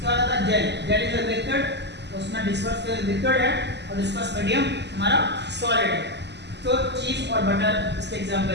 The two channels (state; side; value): late; left; 0.50 ms